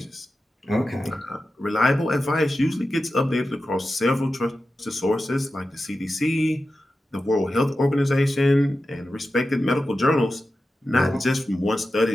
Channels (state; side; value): normal; both; correlation 0.92